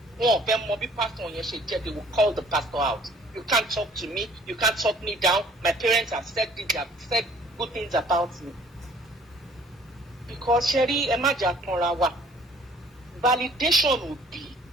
one of them mobile pastor on your shit, they will call the pastor out. You can't talk to me, you can't talk me down. My parents have said this, they have said good things about me. Because Sherry, validation would be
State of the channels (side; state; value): both; normal; correlation 0.56